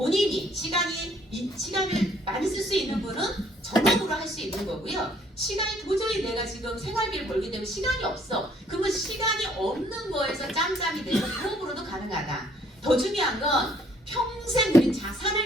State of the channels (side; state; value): both; normal; correlation 0.63